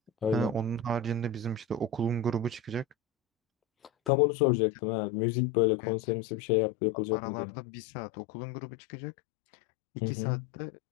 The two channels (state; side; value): drops out; right; at 4.1 s